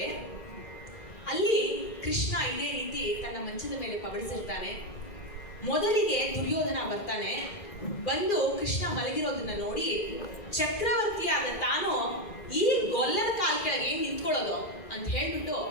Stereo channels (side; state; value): right; late; 2.4 ms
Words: ಅಲ್ಲಿ ಕೃಷ್ಣ ಇದೇ ರೀತಿ ತನ್ನ ಮಂಚದ ಮೇಲೆ ಪಬಡಿಸಿರ್ತಾನೆ. ಮೊದಲಿಗೆ ದುರ್ಯೋಧನ ಬರ್ತಾನೆ. ಬಂದು ಕೃಷ್ಣ ಮಲಗಿರೋದನ್ನ ನೋಡಿ ಚಕ್ರವರ್ತಿಯಾದ ತಾನು ಈ ಗೊಲ್ಲದ ಕಾಲ ಕೆಳಗೆ ಏನ್ ನಿಂತ್ಕೊಳ್ಳೋದು ಅಂತ ಹೇಳ್ಬಿಟ್ಟು